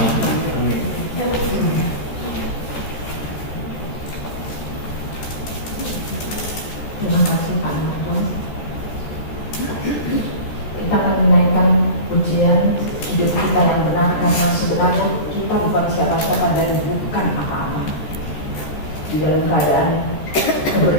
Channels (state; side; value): late; right; 14 ms